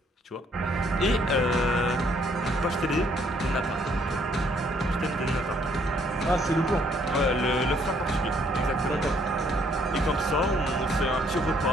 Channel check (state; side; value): normal; both; correlation 0.66